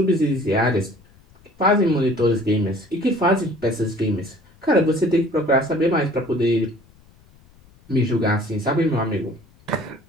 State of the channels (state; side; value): noise; left; rumble, 29 dB below the sound